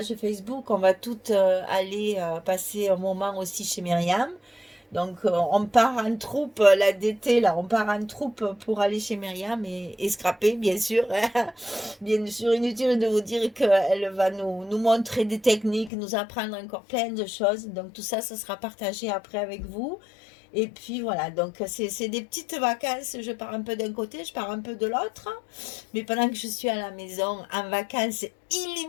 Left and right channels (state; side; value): drops out; right; at 15.9 s